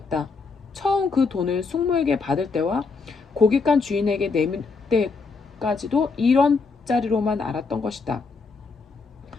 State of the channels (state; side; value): quieter; right; 4.5 dB